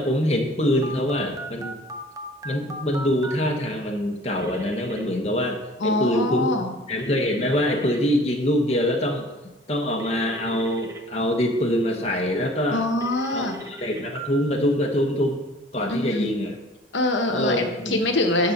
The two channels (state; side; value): normal; both; correlation 0.48